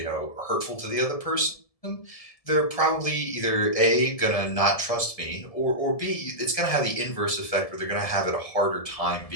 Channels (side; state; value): right; late; 1.7 ms